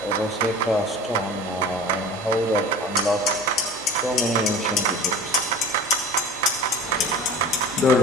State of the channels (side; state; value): both; normal; correlation 0.39